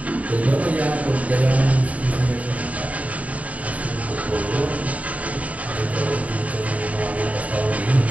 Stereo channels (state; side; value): late; left; 0.069 ms